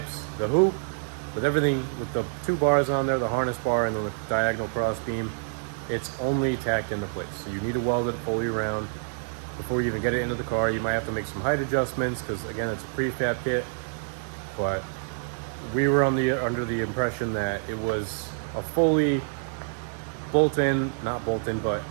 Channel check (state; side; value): silent; left; 55 dB below the other